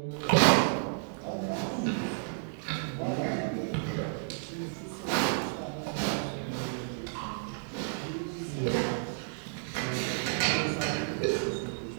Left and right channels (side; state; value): left; silent; digital silence